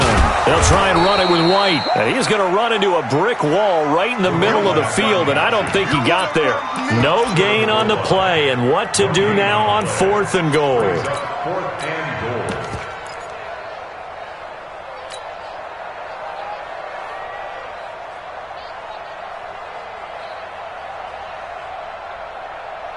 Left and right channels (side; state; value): both; identical; correlation 1.00